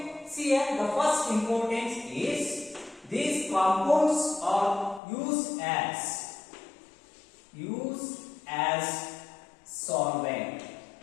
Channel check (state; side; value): drops out; right; at 5.0 s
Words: See here, the first importance is these compounds are used as solvent.